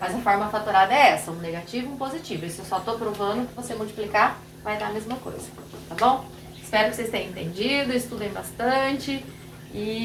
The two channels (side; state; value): both; identical; correlation 1.00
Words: a forma fatorada é essa, um negativo e um positivo. Isso eu só estou provando que você multiplicar vai dar a mesma coisa, tá bom? Espero que vocês tenham entendido, estudem bastante